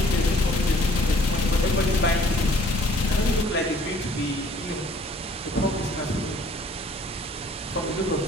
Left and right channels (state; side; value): normal; both; correlation 0.58